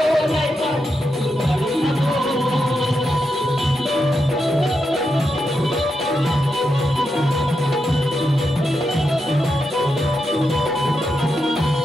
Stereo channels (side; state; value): both; normal; correlation 0.85